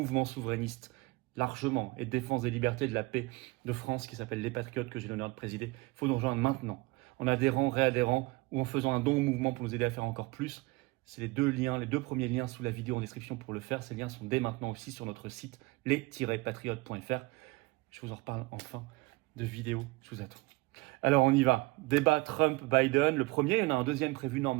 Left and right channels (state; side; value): quieter; left; 23.1 dB